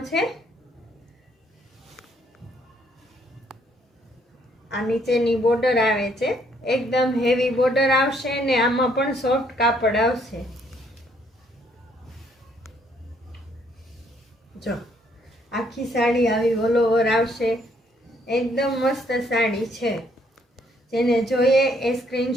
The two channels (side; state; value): both; normal; correlation 0.68